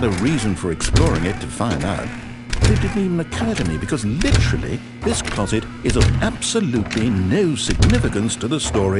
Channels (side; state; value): both; identical; correlation 1.00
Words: a reason for exploring it to find out. But it didn't even occur to me because literally this closet is of absolutely no significance to the